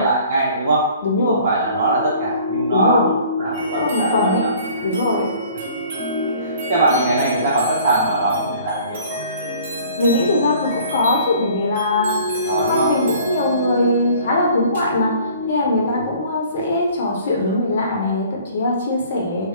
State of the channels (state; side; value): inverted; both; correlation -0.52